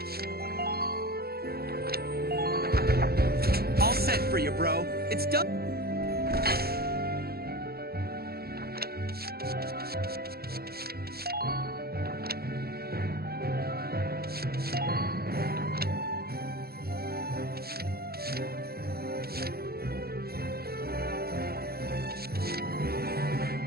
All set for you, bro. It's done.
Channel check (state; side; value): late; left; 0.45 ms